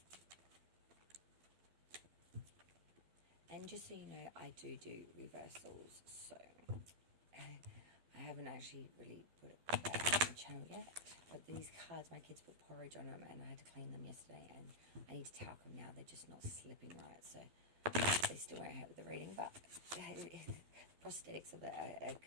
And just so you know, I do reversals, so I haven't actually really put it back on the channel yet. But these cards, my kids put porridge on them and I had to clean them yesterday and I need to talc them now. They're just not slipping right, so they still won't help with the reading, but prosthetics of it are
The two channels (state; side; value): late; left; 12 ms